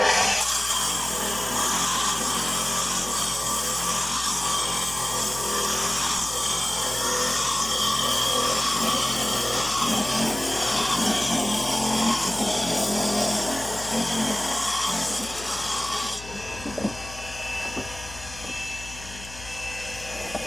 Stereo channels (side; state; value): left; noise; hum, 15 dB below the sound